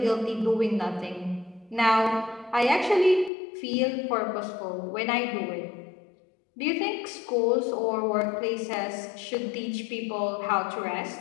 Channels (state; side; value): drops out; right; at 3.3 s